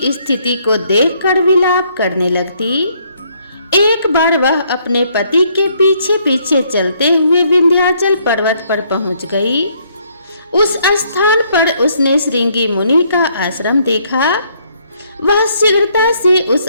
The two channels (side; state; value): both; inverted; correlation -0.69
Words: स्थिति को देखकर विलाप करने लगती। एक बार वह अपने पति के पीछे पीछे चलते हुए विंध्याचल पर्वत पर पहुंच गई। उस स्थान पर उसने श्रृंगी मुनि का आश्रम देखा। वह शीघ्रता से उस